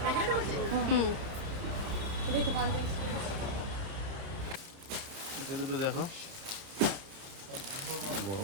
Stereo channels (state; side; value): late; left; 30 ms